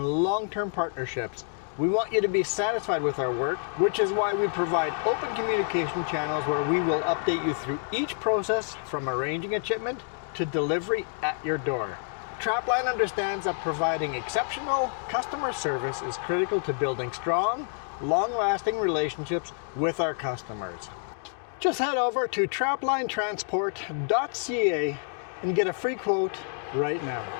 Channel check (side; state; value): right; silent; 59 dB below the other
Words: long-term partnerships. We want you to be satisfied with our work, which is why we provide open communication channels where we will update you through each process from arranging a shipment to delivery at your door. Trapline understands that providing exceptional customer service is critical to building strong, long-lasting relationships with our customers. Just head over to traplinetransport.ca and get a free quote right now.